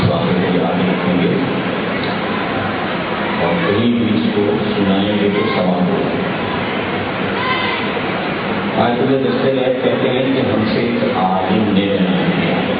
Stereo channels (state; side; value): identical; both; correlation 1.00